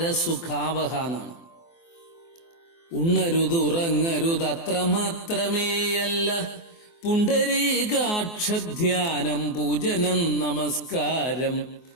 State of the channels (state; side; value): late; right; 24 ms